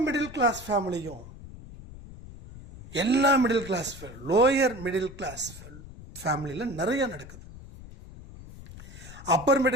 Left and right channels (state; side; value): noise; left; rumble, 16 dB below the sound